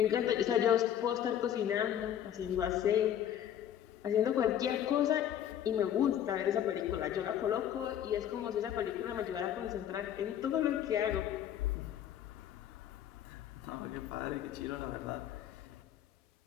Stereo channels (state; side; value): quieter; right; 10.3 dB